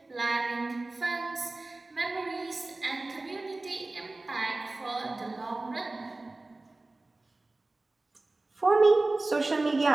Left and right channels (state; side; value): quieter; left; 3.1 dB